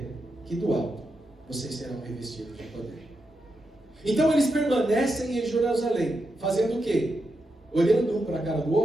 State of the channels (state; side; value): normal; both; correlation 0.86